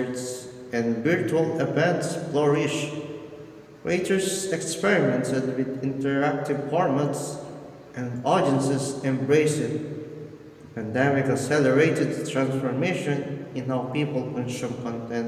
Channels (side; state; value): both; identical; correlation 1.00